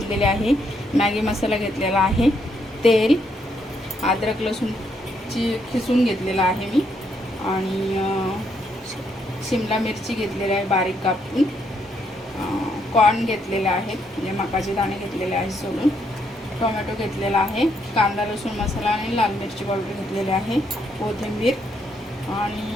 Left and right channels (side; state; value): both; normal; correlation 0.75